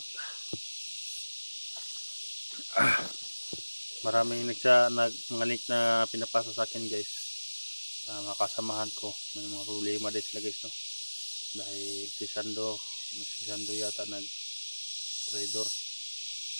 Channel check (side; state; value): both; inverted; correlation -1.00